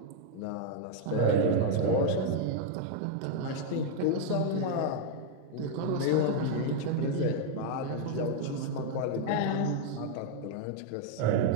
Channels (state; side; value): different; both; correlation 0.00